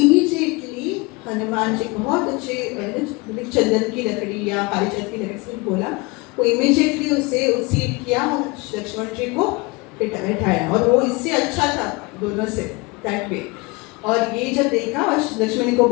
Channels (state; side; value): quieter; right; 25.8 dB